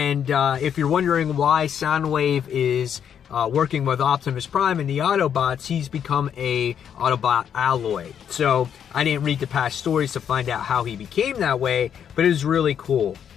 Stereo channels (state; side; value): quieter; right; 8.5 dB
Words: if you're wondering why Soundwave is working with Optimus Prime and the Autobots, he's become a Autobot alloy. So I didn't read the past stories to find out how he became that way, but it was really cool.